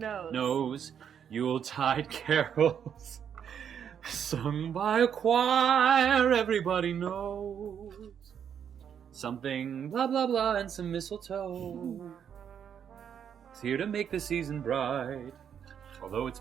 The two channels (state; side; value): quieter; left; 8.3 dB